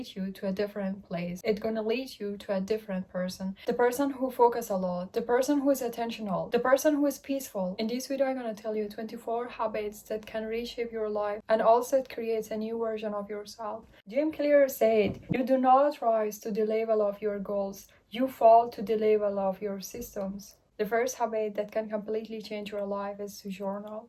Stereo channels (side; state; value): both; identical; correlation 1.00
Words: you to a different place. It's going to lead you to a different person. The person who focus a lot, the person who is attentional, the person who is peaceful. In this video, I'm going to tell you 24 habits that can reshape your life, and also it creates a new version of yourself. Jim Clear said, you do not rise to the level of your goals, you fall to the level of your systems. The first habit that can completely change your life is to journal.